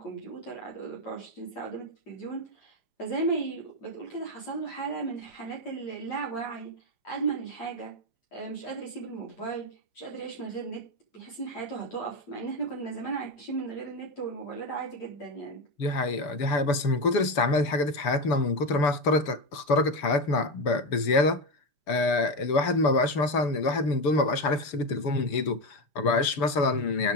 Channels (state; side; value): late; right; 5.0 ms